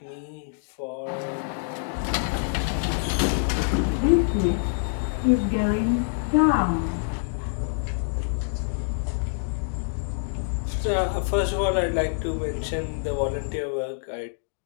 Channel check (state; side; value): silent; right; digital silence